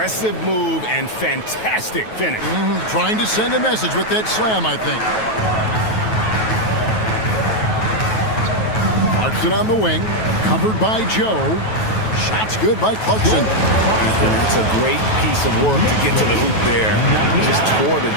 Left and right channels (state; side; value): late; right; 9.2 ms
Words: move and fantastic finish. Trying to send a message with that slam, I think. Clarkson on the wing, covered by Joe. Shots good by Clarkson. It's a great piece of work to get to the hoop there. Just tore the